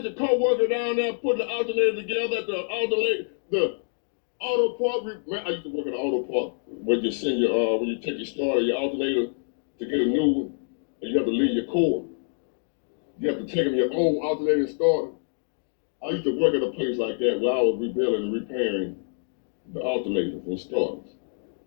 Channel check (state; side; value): silent; right; digital silence